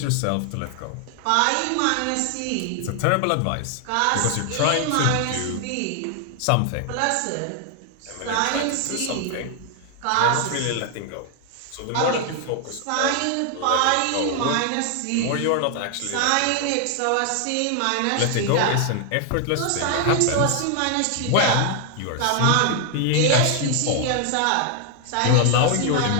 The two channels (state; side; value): different; both; correlation 0.00